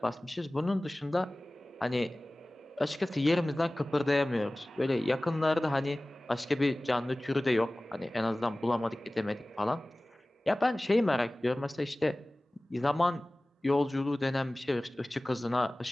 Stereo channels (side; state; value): both; normal; correlation 0.98